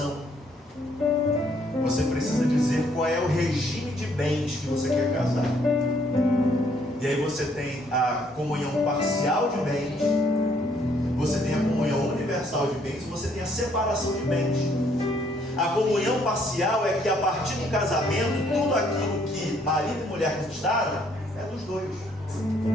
Você precisa dizer qual é o regime de bens que você quer casar. E aí você tem a comunhão parcial de bens, você tem a comunhão universal de bens, e você tem a separação de bens. A comunhão parcial é que a partir do casamento, tudo aquilo que marido e mulher conquistaram é dos dois.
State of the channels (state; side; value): normal; both; correlation 0.67